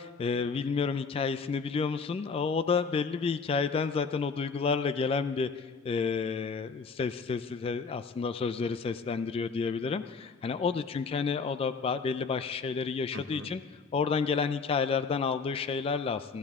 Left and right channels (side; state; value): right; quieter; 5.0 dB